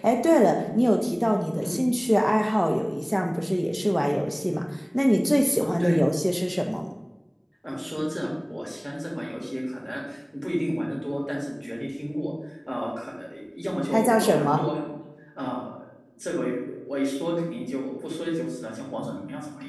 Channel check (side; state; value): both; identical; correlation 1.00